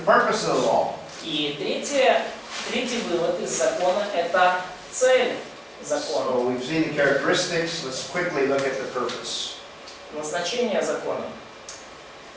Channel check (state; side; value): identical; both; correlation 1.00